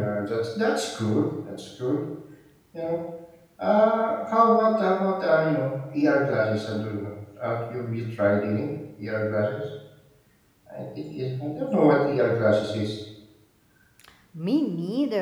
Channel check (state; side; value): identical; both; correlation 1.00